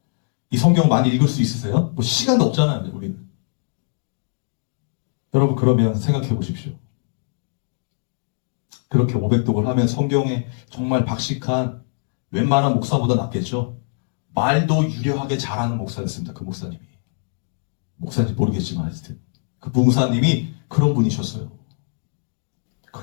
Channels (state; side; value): silent; right; digital silence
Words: 이 성경을 많이 읽을 수 있으세요? 뭐 시간도 없잖아요, 우리는. 여러분, 그러면 생각해 보십시오. 그렇게 500독을 하면 성경에 정말 박식한 웬만한 목사보다 낫겠죠? 말도 유려하게 잘하는 목사였습니다. 그 목사님이. 목사인지 모르겠지만 하여튼 그 목사님이 그런 분이셨어요.